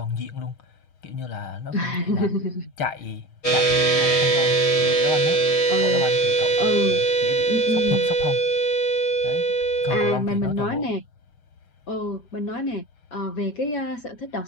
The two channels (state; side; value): late; right; 6.4 ms